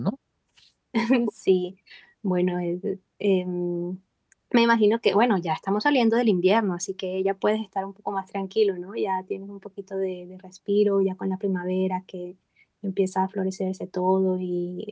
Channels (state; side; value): identical; both; correlation 1.00